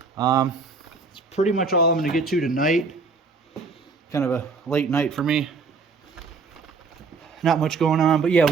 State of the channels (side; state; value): left; quieter; 4.4 dB